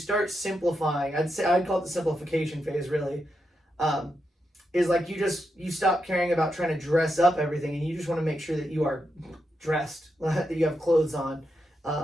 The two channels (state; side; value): normal; both; correlation 0.85